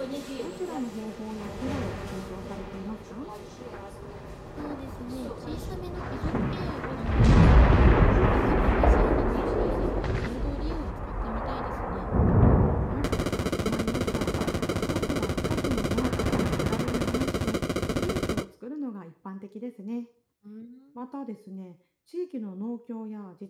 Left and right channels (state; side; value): identical; both; correlation 1.00